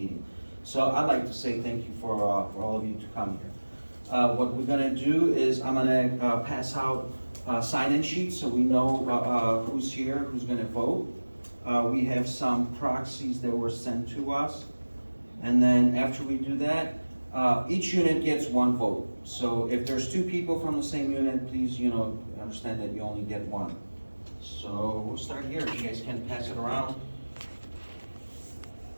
So I'd like to say thank you for all of you to come here. What we're gonna do is I'm gonna pass out sign-in sheets so we know who's here, who's gonna vote. We have some proxies that were sent to us. And then after we do that, each unit gets one vote. So if there's two people from the same unit, please, understand that you only get one. So we'll start here. You guys can pass it around.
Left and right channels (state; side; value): inverted; both; correlation -1.00